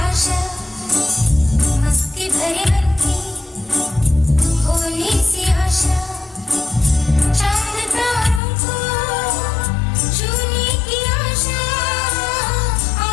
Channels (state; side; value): drops out; right; at 8.4 s